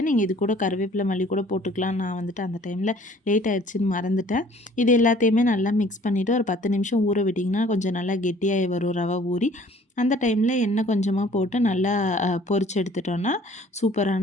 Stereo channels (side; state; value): both; normal; correlation 0.54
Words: நீங்கள் இது கூட கருவேப்பிலை மல்லி கூட போட்டுக்கலாம். நான் வந்துட்டு அந்த டைமில் லேட் ஆகிடுச்சின்னு மறந்துட்டேன். இது எல்லாத்தையுமே நல்லா மிக்ஸ் பண்ணிவிட்டு ஒரு 10 நிமிஷம் ஊற விட்டிங்கன்னா கொஞ்சம் நல்லா கெட்டியாகி வரும் ரவை ஊறி. அந்த டைமில் எண்ணெய் கொஞ்சமாக போட்டு நல்லா பொரிச்சு எடுத்துட்டோன்னா